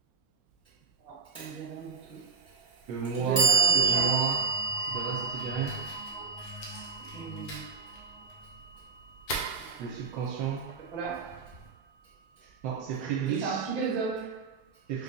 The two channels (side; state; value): left; quieter; 5.0 dB